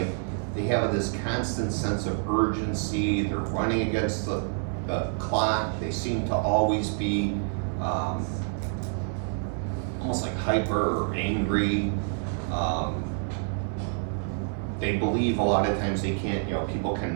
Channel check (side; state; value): left; silent; 60 dB below the other